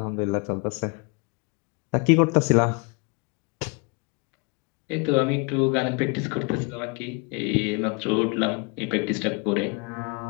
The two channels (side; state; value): right; quieter; 31.7 dB